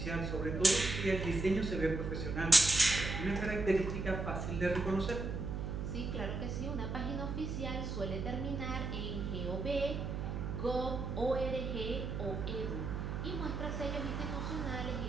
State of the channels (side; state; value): right; noise; hum, 3 dB below the sound